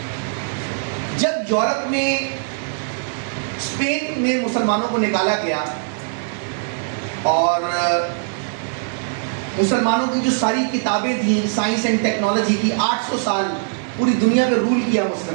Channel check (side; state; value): left; silent; 65 dB below the other